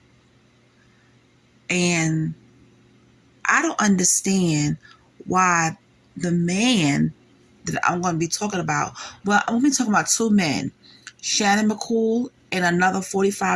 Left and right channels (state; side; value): identical; both; correlation 1.00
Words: And I don't understand why the man that I'm going to be talking about, well, I'm going to be talking about two men, Shannon McCoole and another